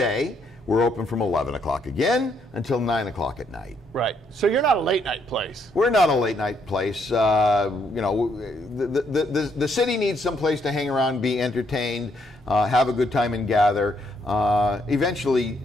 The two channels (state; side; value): normal; both; correlation 0.73